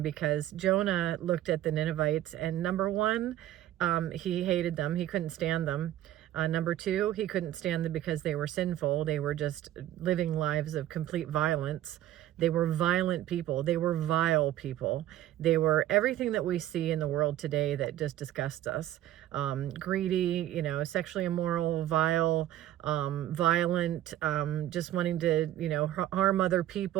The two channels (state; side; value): quieter; left; 13.2 dB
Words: because Jonah looked at the Ninevites, and number one, he hated them. He couldn't stand them. Number two, he couldn't stand them because they were sinful. They were just living lives of complete violence. They were violent people. They were vile people. They were everything that we see in the world today that just disgusts us. Greedy, you know, sexually immoral, vile, violent, just wanting to, you know, harm other